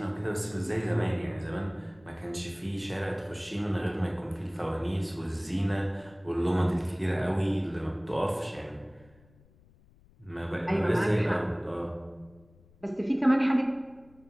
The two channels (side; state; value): left; noise; rumble, 28 dB below the sound